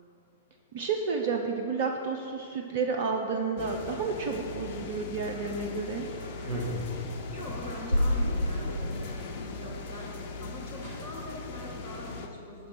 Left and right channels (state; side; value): inverted; both; correlation -0.38